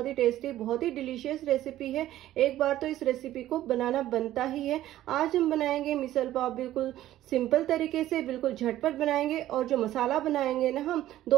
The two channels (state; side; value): quieter; left; 13.8 dB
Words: ही टेस्टी, बहुत ही डिलीशियस रेसिपी है। एक बार तो इस रेसिपी को बनाना बनता ही है। आज हम बनाएंगे मिसल पाव बिल्कुल सिंपल तरीके से, बिल्कुल झटपट बनाएंगे। और जो मसाला बनाएंगे ना, हम